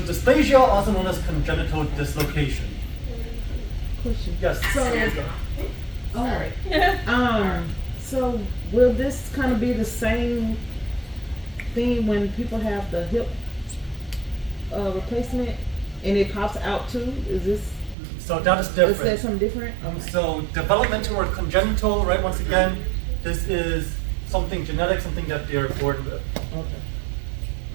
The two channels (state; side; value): drops out; left; at 17.9 s